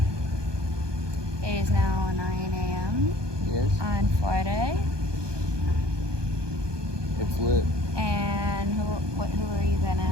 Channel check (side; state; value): left; late; 1.2 ms